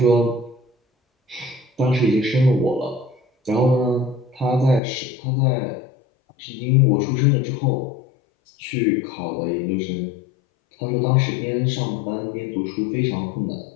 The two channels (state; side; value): drops out; right; at 4.8 s